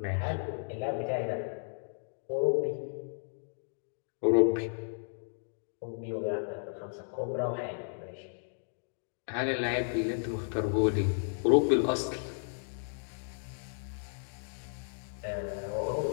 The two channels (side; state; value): right; silent; digital silence